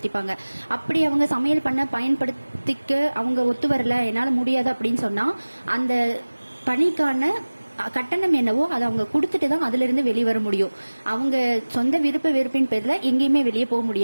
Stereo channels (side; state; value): both; inverted; correlation -1.00